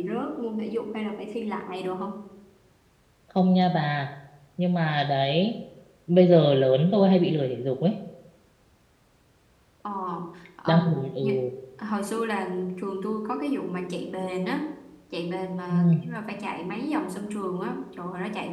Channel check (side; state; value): both; identical; correlation 1.00